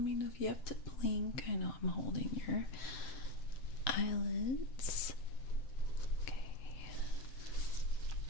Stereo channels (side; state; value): right; late; 7.9 ms